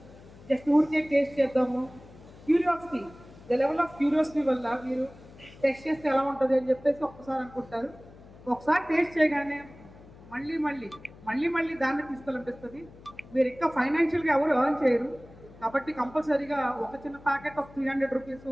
జస్ట్ ఊరికే టేస్ట్ చేద్దాము. Curiosity, the level of curiosity వల్ల మీరు టెస్ట్ చేస్తే ఎలా ఉంటుంది అని చెప్పేసి ఒక్కసారి అనుకుంటారు. ఒకసారి టేస్ట్ చేయగానే మళ్ళీ దాన్ని తీసుకోవాలనిపిస్తుంది. మీరు ఇంకా ఫైనాన్షియల్గా ఎవరు ఎర్న్ చేయరు కాబట్టి కంపల్సరీగా ఒక చిన్న ప్యాకెట్ ఆఫ్ 300 రూపీస్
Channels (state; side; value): noise; left; hum, 21 dB below the sound